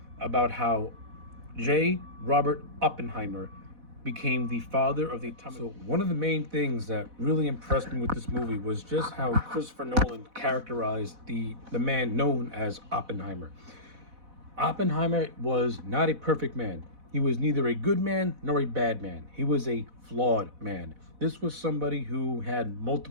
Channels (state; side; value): late; left; 4.1 ms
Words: about how J. Robert Oppenheimer became the father of the atomic. So one of the main things that really impressed me with this movie was just how Christopher Nolan characterized the man known as Oppenheimer. Oppenheimer was not a perfect man. He was neither a good man nor a bad man. He was a flawed man. This was somebody who had